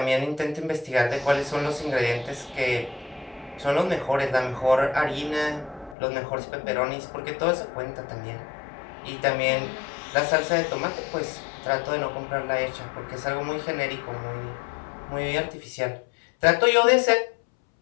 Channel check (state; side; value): drops out; right; at 6.0 s